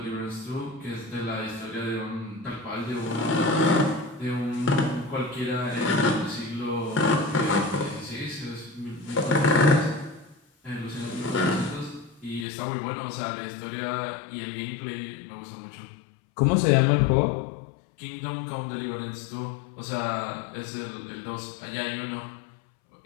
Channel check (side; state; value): right; drops out; at 12.5 s